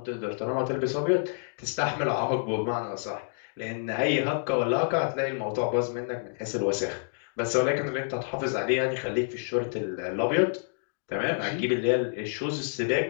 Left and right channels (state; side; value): silent; right; digital silence